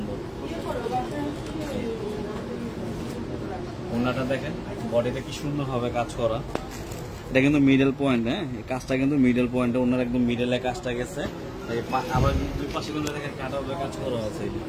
ওড়নাটা দেখেন, বডিতে কি সুন্দর হবে কাজ করা। এটা কিন্তু মিডল পয়েন্ট। হ্যাঁ, এই কাজটা কিন্তু মিডল পয়েন্টে, ওনার একদম মিডলে কাজটা গেছে। আবার দুই পাশে কিন্তু দেখেন কাটারের কাজ করা আছে, এই যে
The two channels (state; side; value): identical; both; correlation 1.00